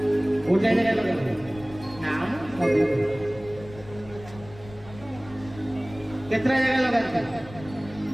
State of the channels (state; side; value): noise; left; rumble, 18 dB below the sound